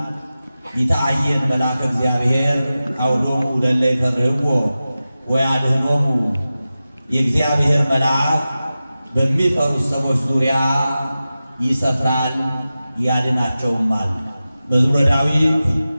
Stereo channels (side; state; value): both; inverted; correlation -0.94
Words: ይታየን መልአከ እግዚአብሔር አውዶሙ ለእለ ይፈርህዎ ወያድኅኖሙ። የእግዚአብሔር መልአክ በሚፈሩት ሰዎች ዙሪያ ይሰፍራል ያድናቸውማል። መዝሙረ ዳዊት